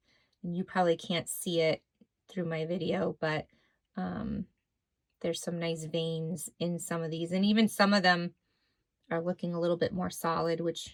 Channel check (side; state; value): both; identical; correlation 1.00